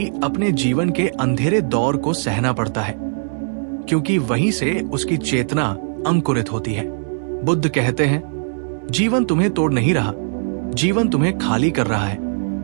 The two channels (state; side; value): silent; left; 64 dB below the other